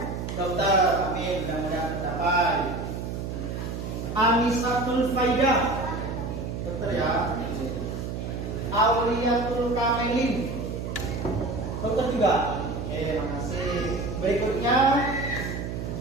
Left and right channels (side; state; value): right; noise; hum, 5 dB below the sound